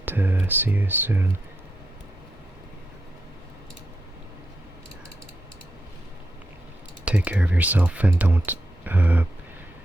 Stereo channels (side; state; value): both; normal; correlation 0.85